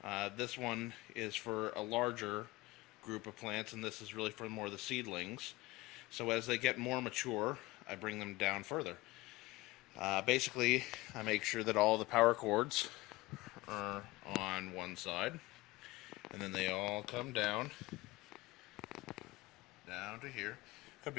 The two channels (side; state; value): right; quieter; 20.5 dB